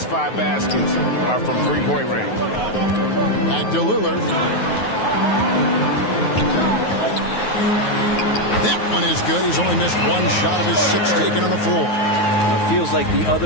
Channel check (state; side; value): late; right; 9.4 ms